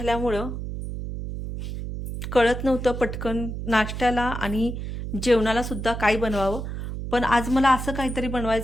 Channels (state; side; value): noise; right; hum, 6 dB below the sound